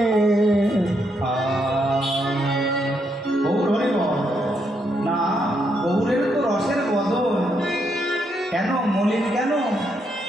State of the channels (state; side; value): normal; both; correlation 0.77